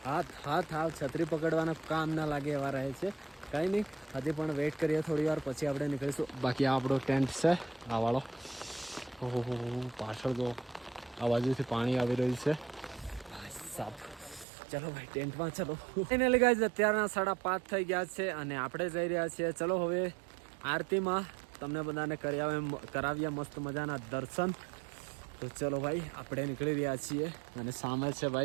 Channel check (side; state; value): left; drops out; at 14.5 s